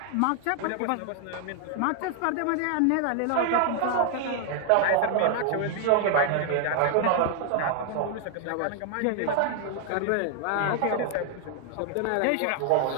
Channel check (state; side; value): different; both; correlation 0.00